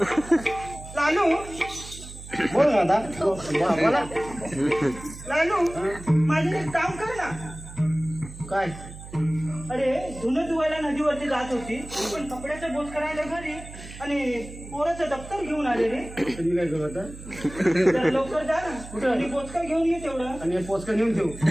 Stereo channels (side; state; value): right; noise; hum, 14 dB below the sound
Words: लालू बोल ना आता बोला लालू माझं एक काम कर ना काय अरे धुणं धुवायला नदीवरती जात होती पण कपड्याचं बोच करायला घरी आणि पोराचं दप्तर घेऊन आले रे. तुम्ही काय करू आता तर लवकर जा ना आणि बोचका घेऊन ये तेवढं. आणि हे पोचकं नेऊन ठेवू